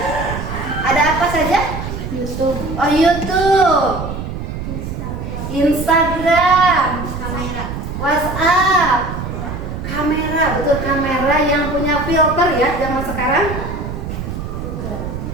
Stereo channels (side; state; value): right; noise; rumble, 6 dB below the sound